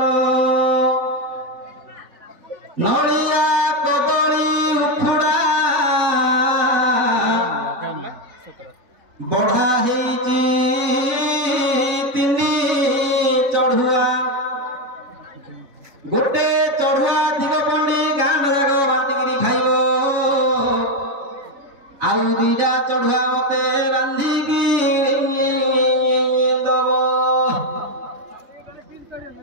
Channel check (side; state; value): left; late; 3.5 ms